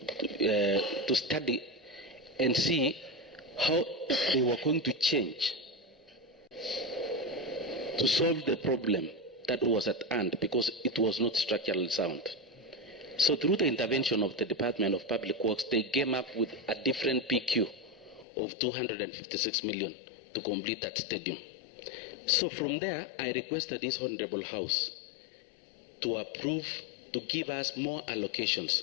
to study and see how they were going to change to solve the problem that was at hand, because it was not structurally sound. So through the intervention of the Department of Public Works, they came up with a different PQ of 256 million to complete that stadium. So from there, I requested this Honorable House to approve, to give us more allocations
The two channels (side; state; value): right; drops out; at 18.2 s